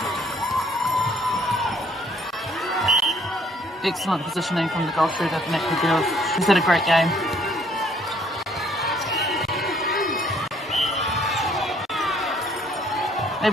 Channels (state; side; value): normal; both; correlation 0.62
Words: Excellent positioning from the goal shooter for Napier girls. She's had a great game.